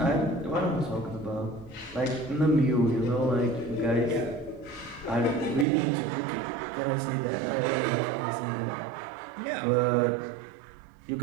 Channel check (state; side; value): drops out; left; at 5.7 s